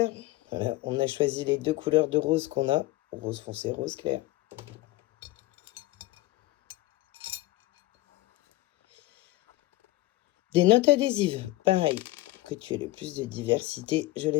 Voilà, on a choisi les 2 couleurs de rose qu'on a. Rose foncé, rose clair. Des notes adhésives. Pareil, que tu aies le plus de diversité. Je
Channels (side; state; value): right; quieter; 18.8 dB